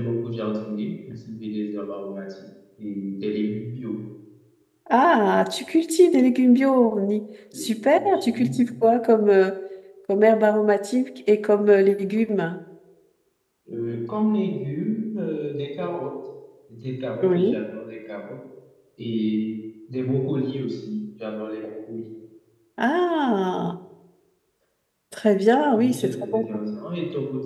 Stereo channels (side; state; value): both; identical; correlation 1.00